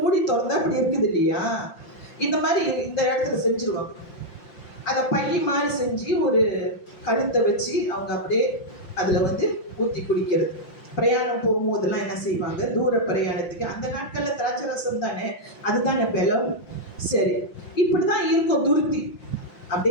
திறந்தா அப்படி இருக்குது இல்லையா, இந்த மாதிரி இந்த இடத்துல செஞ்சிருவாங்க. அதை பை மாதிரி செஞ்சு ஒரு கழுத்தை வச்சு அவங்க அப்படியே அதுல வந்து ஊத்தி குடிக்கிறது. பிரயாணம் போகும்போதெல்லாம் என்ன செய்வாங்க? தூர பிரயாணத்துக்கு. அந்த நாட்கள்ல திராட்சை ரசம் தானே, அதுதானே பலம். சரி, இப்படிதான் இருக்கும் துருத்தி.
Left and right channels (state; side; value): late; right; 5.8 ms